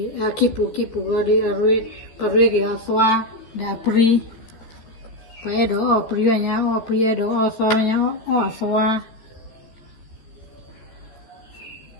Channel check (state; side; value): late; right; 14 ms